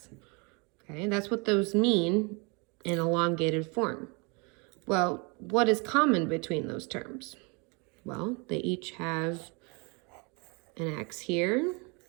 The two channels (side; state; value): left; quieter; 31.0 dB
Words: Okay, that's what those mean in elongated form. Well, what is common between those terms? Well, they each have an x here,